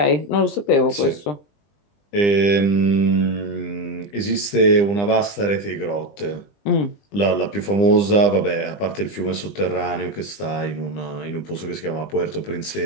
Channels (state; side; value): late; right; 20 ms